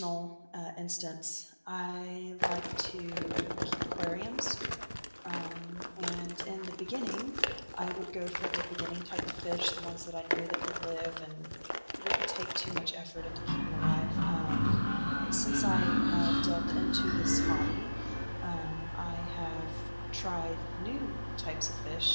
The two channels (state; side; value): inverted; both; correlation -1.00